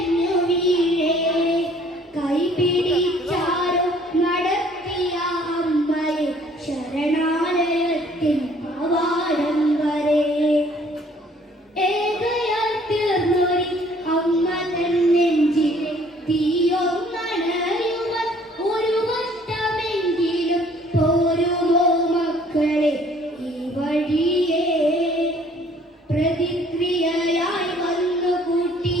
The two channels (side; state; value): both; normal; correlation 0.58